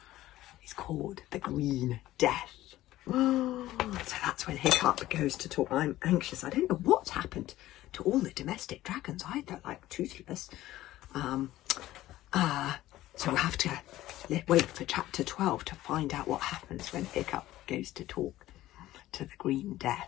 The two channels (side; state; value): right; quieter; 15.3 dB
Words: is called The Green Death. So that's when Hiccup goes to talk. I'm anxious. I don't know what's happened to all the domestic dragons either, like Toothless. So we'll have to wait for chapter 12 to find out what happens when Hiccup goes to talk to the Green